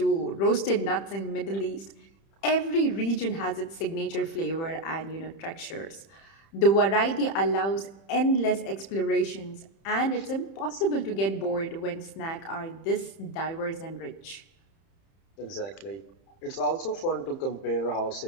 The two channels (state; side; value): late; right; 30 ms